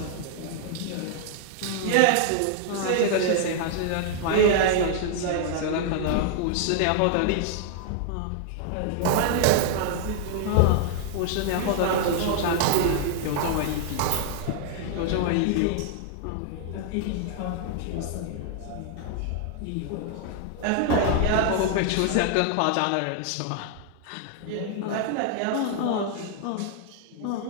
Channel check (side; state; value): both; different; correlation -0.01